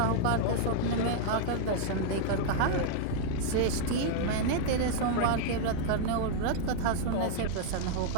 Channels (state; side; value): different; both; correlation 0.00